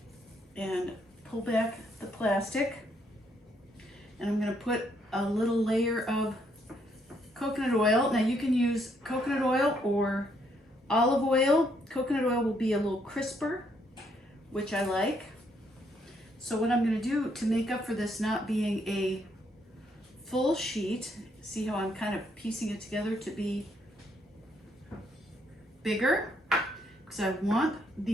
and pull back the plastic, and I'm gonna put a little layer of coconut oil. Now you can use coconut oil or olive oil. Coconut oil will be a little crisper, which I like. So what I'm gonna do to make up for this not being a full sheet, see how I'm kind of piecing it together to be bigger, because I want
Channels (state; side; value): normal; both; correlation 0.72